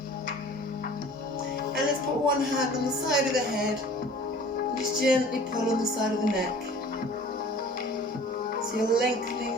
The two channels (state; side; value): normal; both; correlation 0.47